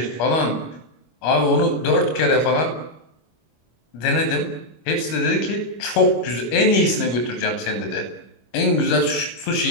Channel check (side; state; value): right; late; 25 ms